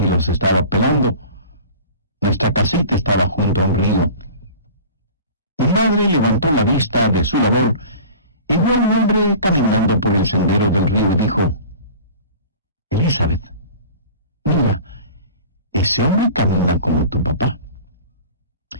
los estaba pelando. Nuestra casita estaba junto a un río. Mi madre levantó la vista de su labor y vio a un hombre caminando por el sendero del río y dijo: Elizabeth, mira, ese hombre camina como tu papá.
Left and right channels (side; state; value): both; inverted; correlation -0.41